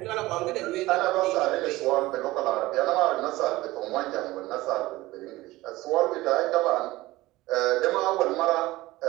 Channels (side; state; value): left; quieter; 18.6 dB